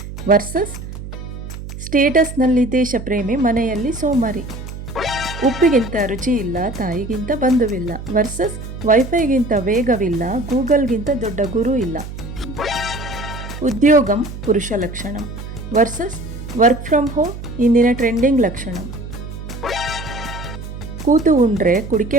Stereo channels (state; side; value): noise; right; hum, 10 dB below the sound